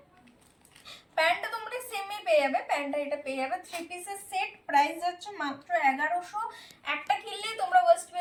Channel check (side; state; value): both; identical; correlation 1.00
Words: প্যান্টটা তোমরা সেমই পেয়ে যাবে, প্যান্টটা এটা পেয়ে যাবে 3 পিসের সেট। প্রাইস যাচ্ছে মাত্র 1100। একটা কিনলেই তোমরা ওয়েস্ট